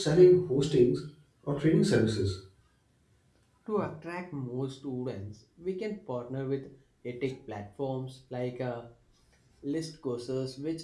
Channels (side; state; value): both; identical; correlation 1.00